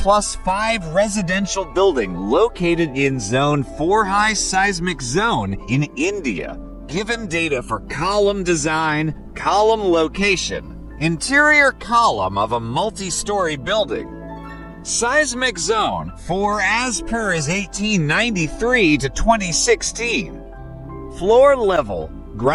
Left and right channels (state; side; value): identical; both; correlation 1.00